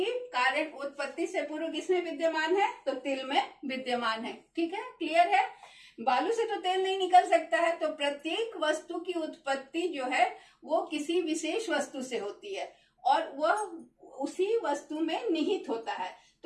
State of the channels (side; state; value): both; identical; correlation 1.00